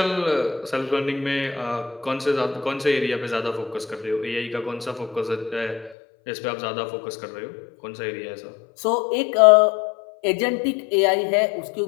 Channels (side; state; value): right; drops out; at 6.0 s